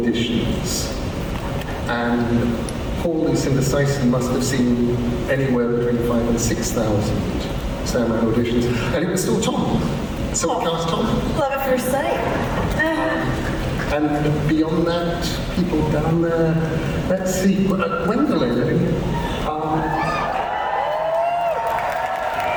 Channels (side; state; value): both; identical; correlation 1.00